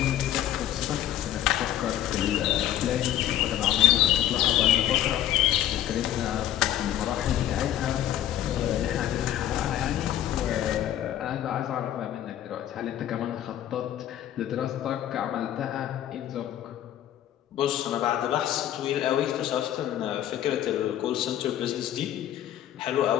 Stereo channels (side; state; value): right; quieter; 12.1 dB